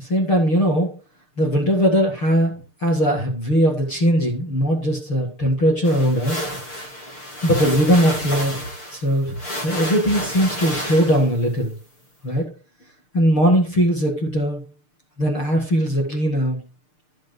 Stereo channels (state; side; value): late; right; 6.6 ms